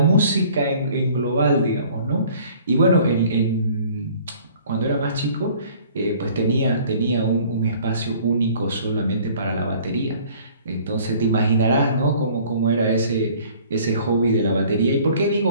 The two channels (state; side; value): inverted; both; correlation -0.53